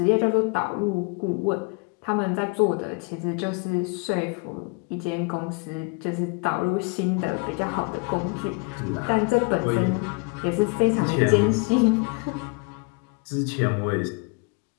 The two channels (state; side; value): quieter; right; 31.6 dB